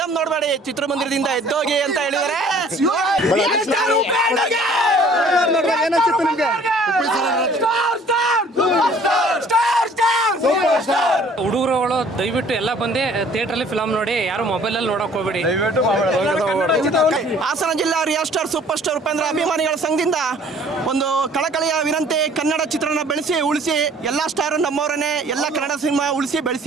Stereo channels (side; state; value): both; normal; correlation 0.54